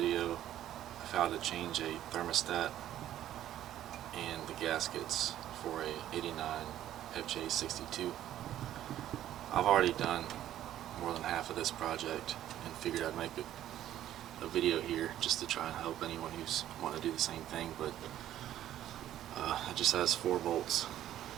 of how to change a thermostat and the gaskets for a 89 FJ62. I've already done more than half of this project and figured I'd make a video here just to try and help anyone who's wanting to do the same thing, but it just has 4 bolts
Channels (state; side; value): quieter; left; 12.2 dB